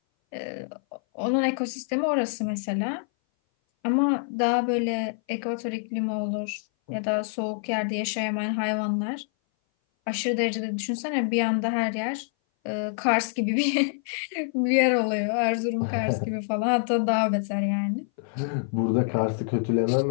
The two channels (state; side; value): silent; right; 58 dB below the other